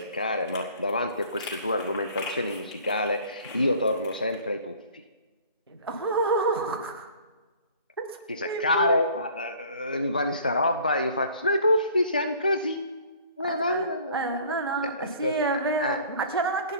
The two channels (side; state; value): both; inverted; correlation -0.50